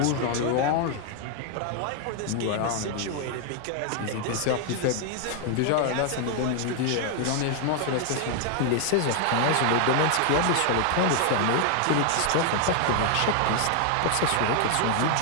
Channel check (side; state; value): both; different; correlation 0.00